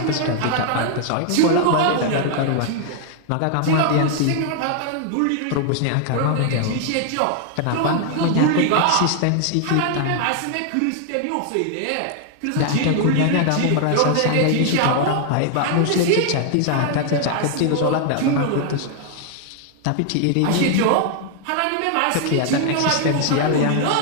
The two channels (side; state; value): both; different; correlation 0.00